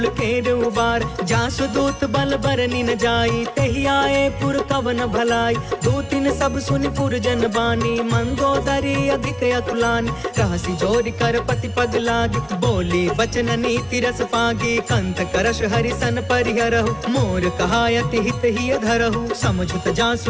केर उबार। जासु दूत बल बरनि न जाई, तेहि आए पुर कवन भलाई। दूतिन सब सुनि पुर जन बानी, मंदोदरी अधिक अतुलानी। रहसि जोरि कर पति पग लागी, बोली बचन नीति रस पागी। कंत करश हरिसन परिहरहु, मोर कहायति हित ही धरहु। समझुत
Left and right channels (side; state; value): both; identical; correlation 1.00